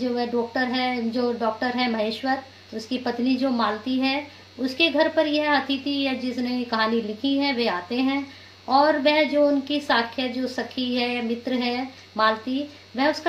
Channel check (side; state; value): both; identical; correlation 1.00